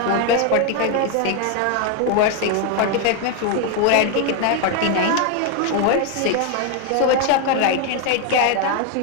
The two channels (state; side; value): different; both; correlation 0.01